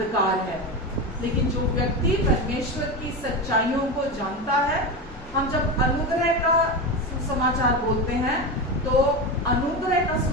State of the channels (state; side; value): normal; both; correlation 0.19